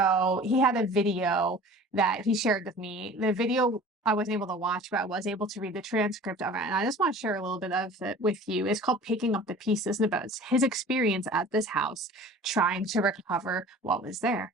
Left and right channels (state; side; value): normal; both; correlation 0.43